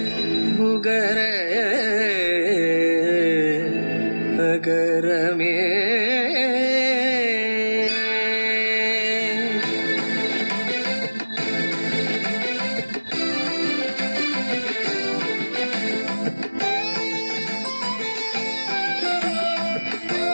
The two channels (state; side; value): inverted; both; correlation -1.00